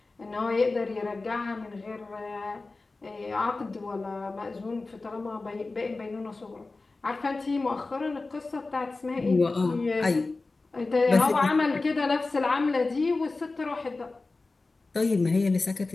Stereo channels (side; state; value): right; quieter; 3.5 dB